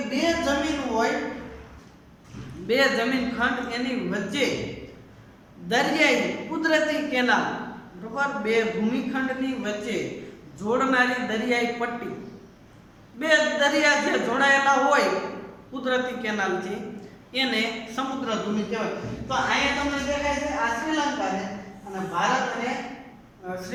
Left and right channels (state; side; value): identical; both; correlation 1.00